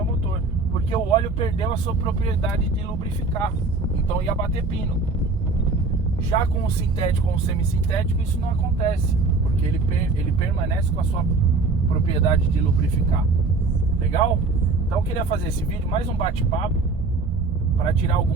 motor, porque o óleo perdeu a sua propriedade de lubrificar, então ia bater pino. Já com o sintético ou o semissintético, isso não acontece, porque ele permanece com a sua propriedade de lubrificar. Legal? Então eu queria fazer esse vídeo, mais um bate-papo, para tirar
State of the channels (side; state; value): left; quieter; 3.8 dB